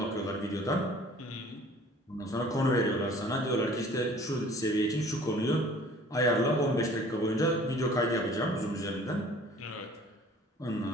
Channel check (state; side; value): normal; both; correlation 0.51